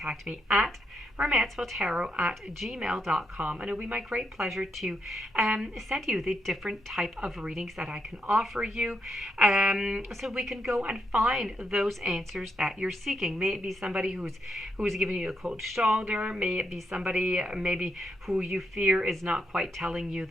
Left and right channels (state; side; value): normal; both; correlation 0.80